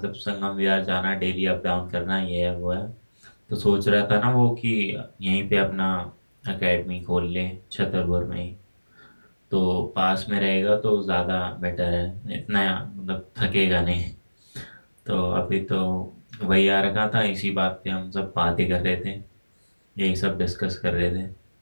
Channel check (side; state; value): both; inverted; correlation -1.00